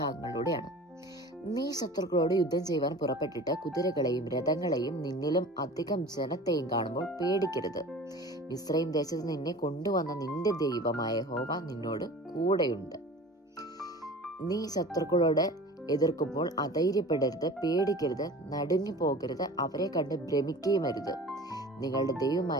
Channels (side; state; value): both; normal; correlation 0.40